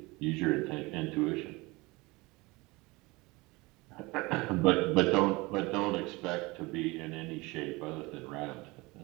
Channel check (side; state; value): left; quieter; 23.6 dB